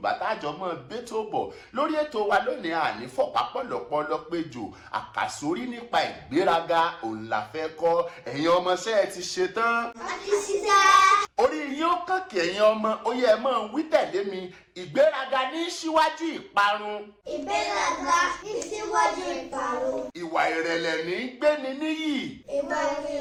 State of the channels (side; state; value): both; identical; correlation 1.00